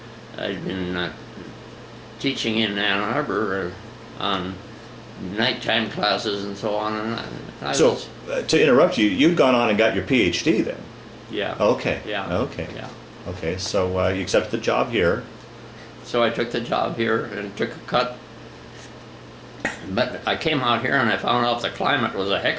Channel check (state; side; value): identical; both; correlation 1.00